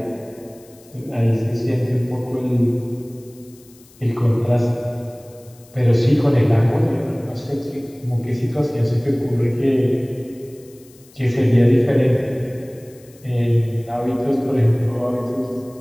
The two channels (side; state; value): left; noise; hiss, 27 dB below the sound